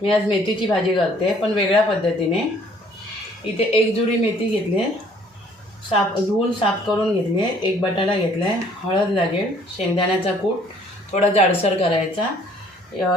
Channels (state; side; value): normal; both; correlation 0.59